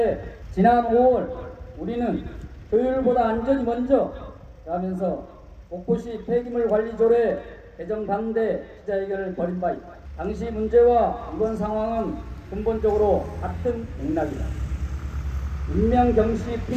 지난 5월 우리는 효율보다 안전이 먼저 라면서 목포시 폐기물 관리 조례 개정 반대 기자회견을 벌인 바 있다. 당시 문제와 이번 상황은 근본적으로 같은 맥락이다. 인명경시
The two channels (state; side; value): identical; both; correlation 1.00